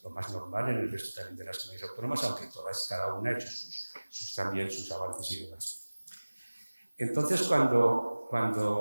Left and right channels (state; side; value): inverted; both; correlation -1.00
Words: normal en el resto también de las comunidades autónomas, aunque cada una ha hecho también sus avances y demás. Entonces,